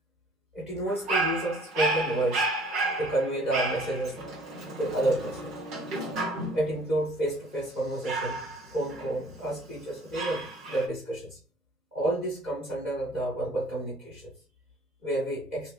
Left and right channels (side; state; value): both; normal; correlation 0.54